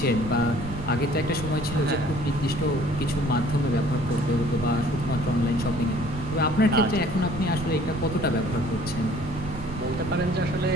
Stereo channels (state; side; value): noise; right; rumble, 10 dB below the sound